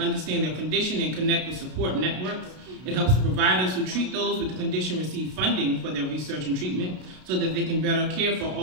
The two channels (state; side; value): late; left; 32 ms